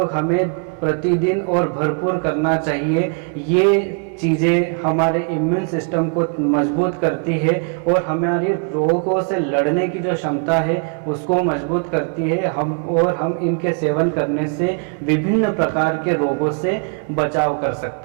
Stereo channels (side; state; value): left; quieter; 38.8 dB